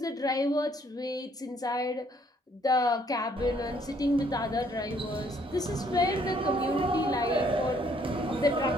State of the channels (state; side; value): normal; both; correlation 0.65